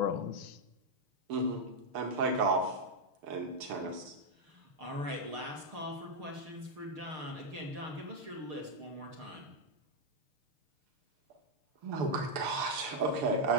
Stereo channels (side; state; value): left; late; 6.9 ms